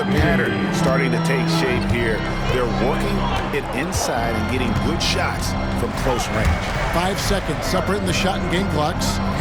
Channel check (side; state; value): both; identical; correlation 1.00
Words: pattern starting to take shape here. They're working it inside and getting good shots from close range. 5 seconds separating the shot and game clocks.